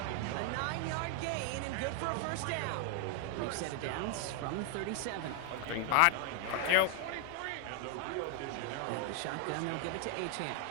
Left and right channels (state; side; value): different; both; correlation 0.01